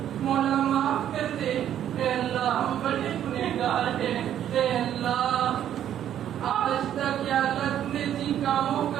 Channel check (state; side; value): quieter; left; 10.6 dB